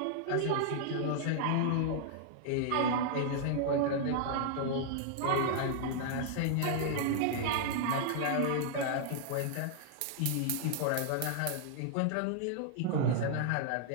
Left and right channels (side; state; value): both; different; correlation -0.01